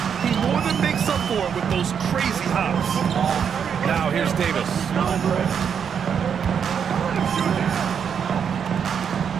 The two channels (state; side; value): quieter; left; 7.4 dB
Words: He more than makes up for it with those crazy hops. Now here's Davis.